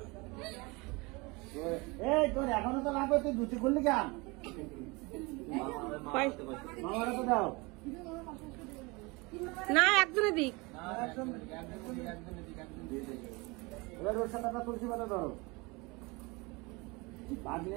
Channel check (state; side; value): quieter; left; 25.9 dB